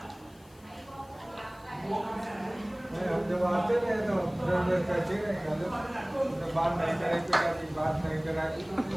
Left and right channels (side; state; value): left; noise; hiss, 28 dB below the sound